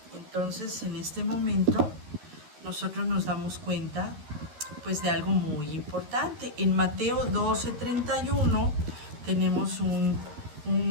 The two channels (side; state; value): left; late; 13 ms